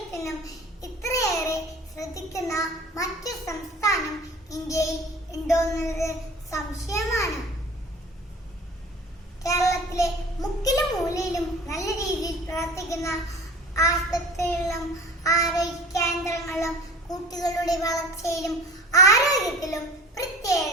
ഇത്രയേറെ ശ്രദ്ധിക്കുന്ന മറ്റു സംസ്ഥാനം ഇന്ത്യയിൽ ഉണ്ടോ എന്നത് സംശയമാണ്. കേരളത്തിലെ മുക്കിലും മൂലയിലും നല്ല രീതിയിൽ പ്രവർത്തിക്കുന്ന ആശുപത്രികളിലും ആരോഗ്യ കേന്ദ്രങ്ങളിലും കുട്ടികളുടെ വളർച്ചയിലും ആരോഗ്യത്തിലും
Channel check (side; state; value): both; normal; correlation 0.42